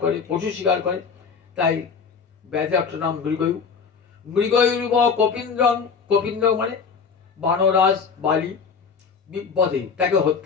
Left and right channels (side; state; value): right; quieter; 5.8 dB